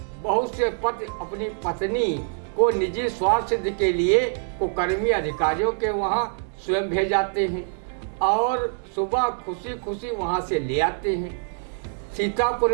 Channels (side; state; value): left; silent; digital silence